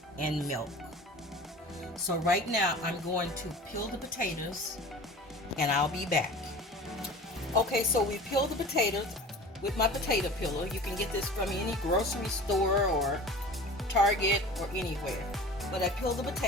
and milk. So right now I'm going to peel the potatoes and I'll be back. Okay, so we peeled the potatoes with my potato peeler. You can get this from any grocery store or Target or anywhere. But I peeled the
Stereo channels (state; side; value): normal; both; correlation 0.39